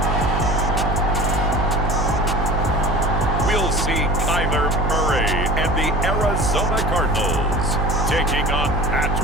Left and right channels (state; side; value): noise; right; hum, 1 dB below the sound